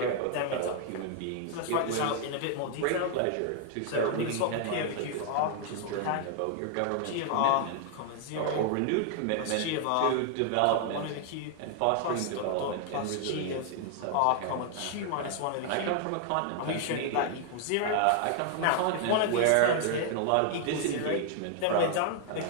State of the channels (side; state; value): both; different; correlation 0.00